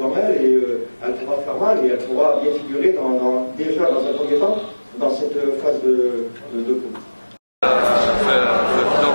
elle et elle pourra faire mal et elle pourra bien figurer déjà dans un premier temps dans cette phase de coupe.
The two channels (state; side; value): inverted; both; correlation -1.00